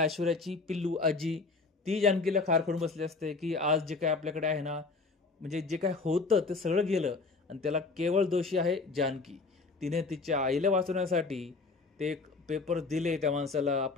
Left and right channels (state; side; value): quieter; right; 4.0 dB